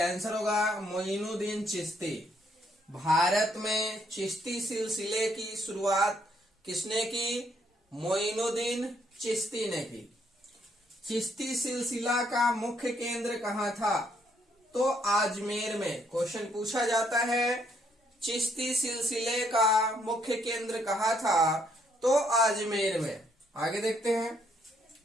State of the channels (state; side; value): normal; both; correlation 0.71